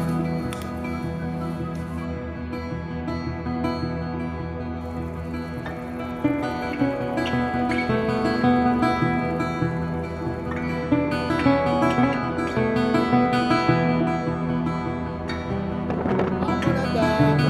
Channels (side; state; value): both; identical; correlation 1.00